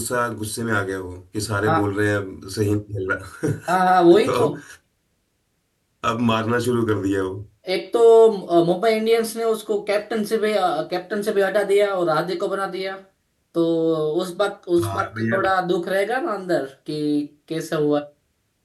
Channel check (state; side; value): identical; both; correlation 1.00